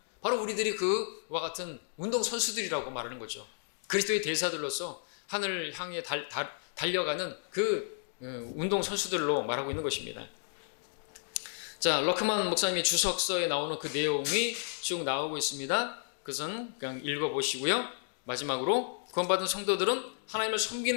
바로 우리들이 그와 같은 운동선수들이라고 말하는 거죠. 그리스도의 대사들로서 하늘을 향해 달려가는 그 운동선수들로 말하고 있는 것입니다. 자, 러크만 목사님의 주석서에 나오는 그 내용이 쭉 나오고 있습니다. 그것은 그냥 읽어보시고요. 마지막으로 구원받은 성도들은 하나님을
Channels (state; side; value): silent; right; digital silence